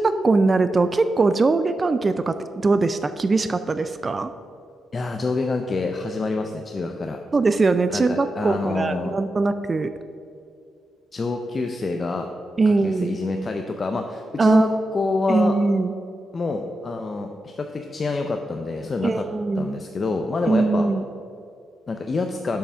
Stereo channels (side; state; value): both; normal; correlation 0.89